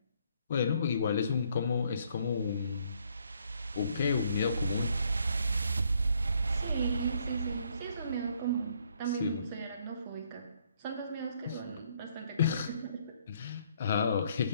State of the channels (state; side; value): inverted; both; correlation -0.68